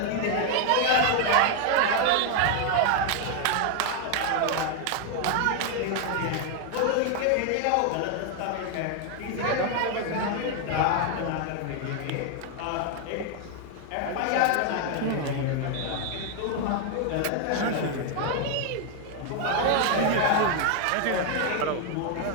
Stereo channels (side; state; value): both; different; correlation 0.00